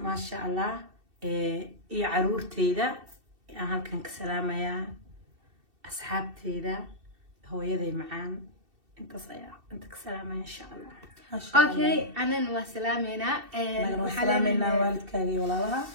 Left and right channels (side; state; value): left; late; 2.7 ms